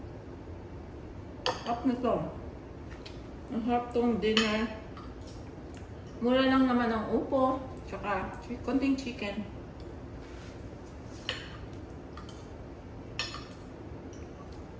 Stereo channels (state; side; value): identical; both; correlation 1.00